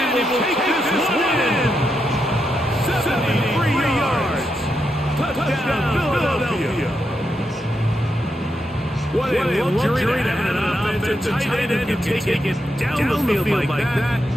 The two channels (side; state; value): both; normal; correlation 0.83